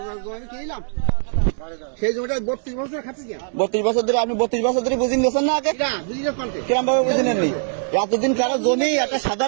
সেই জমিটা 32 বছর খাচ্ছি। 32 বছর ধরে আপনি 32 বছর ধরে বুঝিন গেছেন না? আগে কিরম ভাবে বুঝিনেননি? এতদিন কারো জমি একটা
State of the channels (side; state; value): left; silent; 61 dB below the other